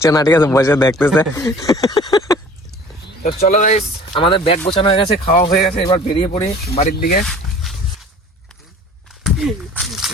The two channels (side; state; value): both; normal; correlation 0.47